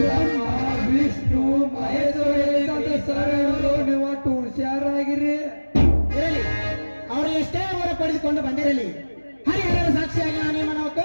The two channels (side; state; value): both; inverted; correlation -1.00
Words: ವಿಷ್ಣು ಮಹೇಶ್ವರ ಸರ್, ನೀವು ಅಷ್ಟು ಹುಷಾರಾಗಿರಿ. ಇರಲಿ, ಅವರು ಎಷ್ಟೇ ಅವರ ಪಡೆದುಕೊಂಡು ಬಂದಿರಲಿ, ಹರಿಹರರ ಸಾಕ್ಷಿಯಾಗಿ ನಾನೇನು